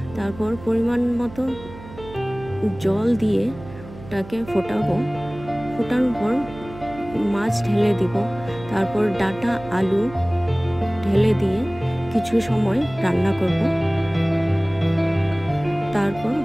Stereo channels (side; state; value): right; noise; hum, 16 dB below the sound